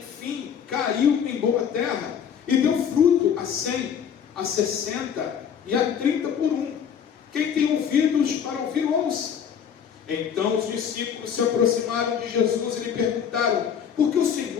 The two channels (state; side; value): quieter; right; 7.9 dB